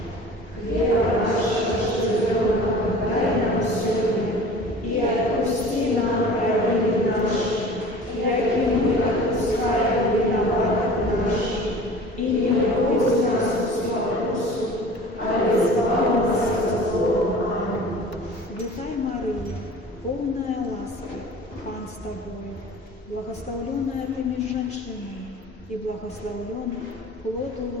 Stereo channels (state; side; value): normal; both; correlation 0.42